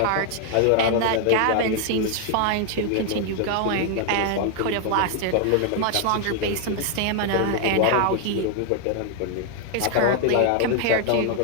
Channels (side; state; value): both; different; correlation 0.00